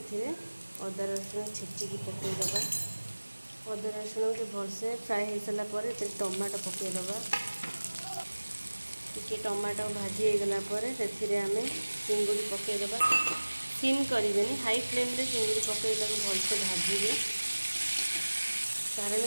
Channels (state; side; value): inverted; both; correlation -1.00